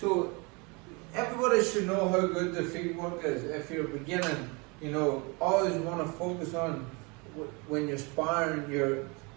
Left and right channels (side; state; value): left; quieter; 29.3 dB